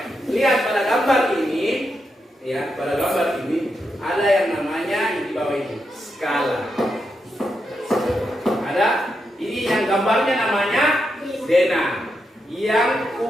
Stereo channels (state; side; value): normal; both; correlation 0.84